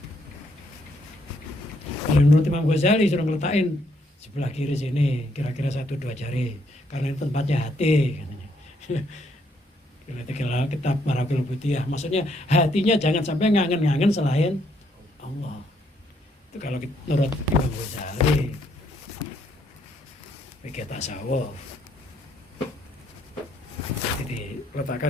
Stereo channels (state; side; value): normal; both; correlation 0.72